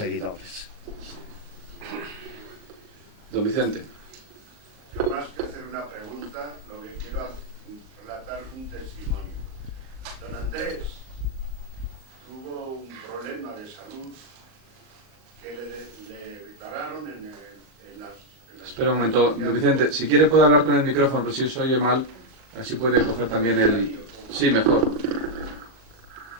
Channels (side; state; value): left; late; 38 ms